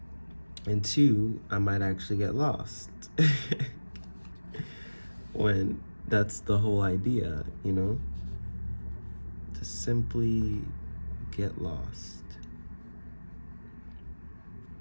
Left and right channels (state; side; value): inverted; both; correlation -1.00